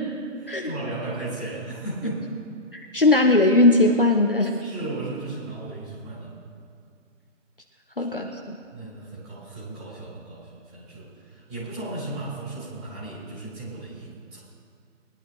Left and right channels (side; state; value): both; normal; correlation -0.13